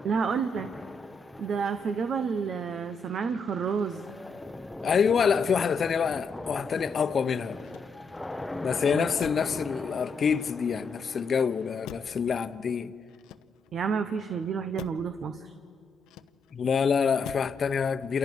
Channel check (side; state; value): right; quieter; 3.2 dB